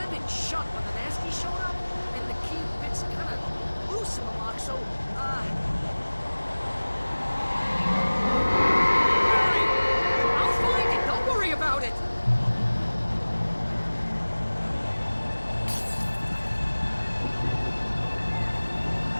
it shut when the nasty showed up, and the key fits kind of loose in the lock, so, Barry! I'll find it, don't worry about it!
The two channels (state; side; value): inverted; both; correlation -1.00